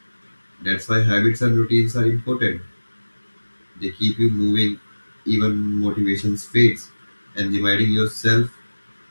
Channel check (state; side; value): inverted; both; correlation -1.00